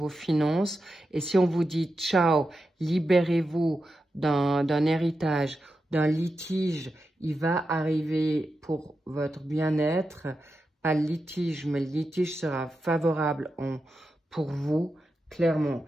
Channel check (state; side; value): normal; both; correlation 0.89